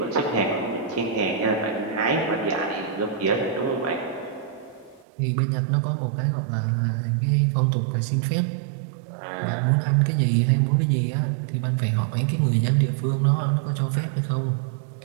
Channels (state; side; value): drops out; left; at 5.1 s